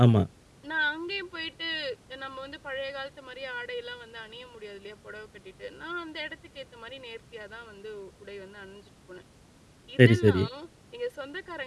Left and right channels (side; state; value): both; identical; correlation 1.00